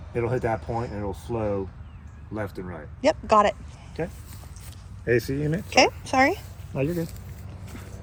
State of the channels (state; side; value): identical; both; correlation 1.00